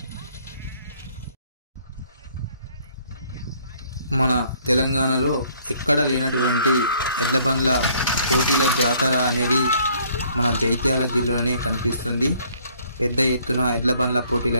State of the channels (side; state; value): both; inverted; correlation -0.62